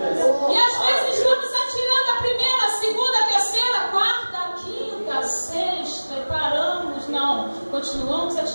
E às vezes estamos atirando a primeira, a segunda, a terceira, a quarta, a quinta, a sexta, e paramos. Não, continuamos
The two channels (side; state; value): both; inverted; correlation -1.00